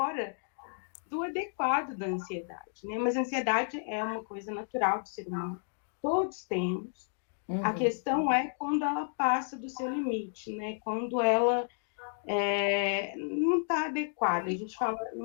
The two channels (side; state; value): right; silent; digital silence